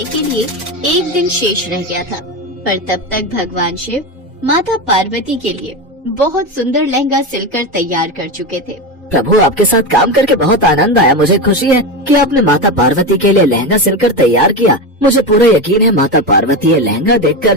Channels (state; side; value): normal; both; correlation 0.18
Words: के लिए एक दिन शेष रह गया था, पर तब तक भगवान शिव माता पार्वती के लिए बहुत सुंदर लहंगा सिलकर तैयार कर चुके थे। प्रभु, आपके साथ काम करके बहुत आनंद आया। मुझे खुशी है कि आपने माता पार्वती के लिए लहंगा सिलकर तैयार किया। मुझे पूरा यकीन है माता पार्वती ये लहंगा